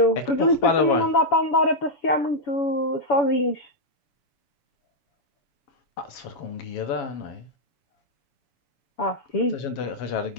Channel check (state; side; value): late; right; 7.3 ms